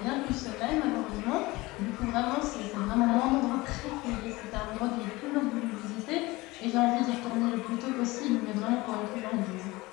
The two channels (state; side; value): quieter; right; 21.2 dB